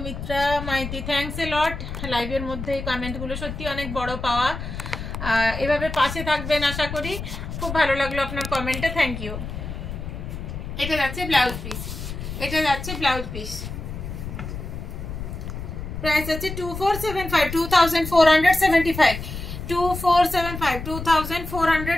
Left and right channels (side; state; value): left; noise; rumble, 7 dB below the sound